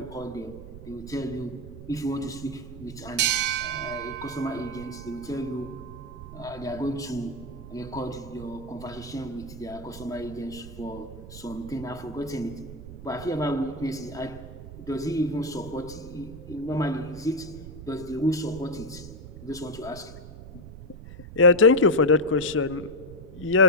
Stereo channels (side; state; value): right; noise; rumble, 13 dB below the sound